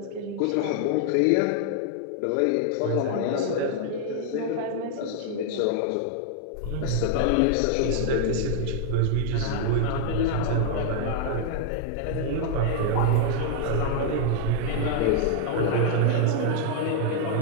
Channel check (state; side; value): different; both; correlation 0.00